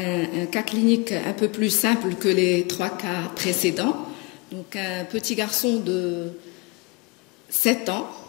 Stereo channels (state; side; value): quieter; right; 27.0 dB